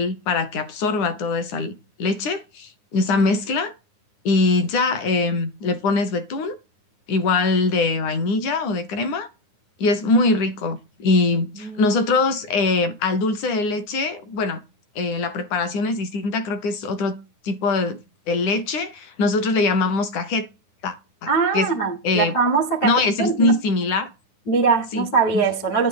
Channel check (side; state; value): right; late; 9.7 ms